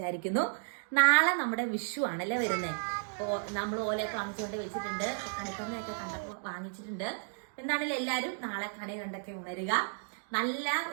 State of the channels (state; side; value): silent; left; digital silence